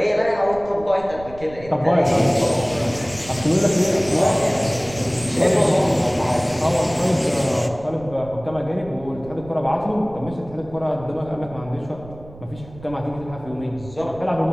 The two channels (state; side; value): noise; right; rumble, 18 dB below the sound